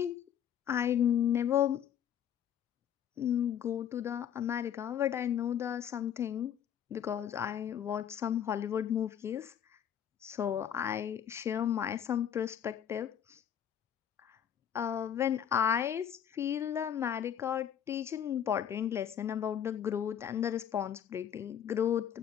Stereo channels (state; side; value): quieter; right; 9.3 dB